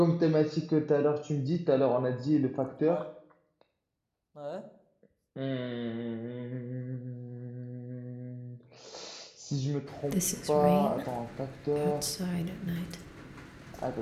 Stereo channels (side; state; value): both; identical; correlation 1.00